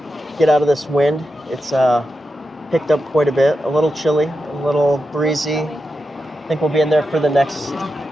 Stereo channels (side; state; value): both; normal; correlation 0.89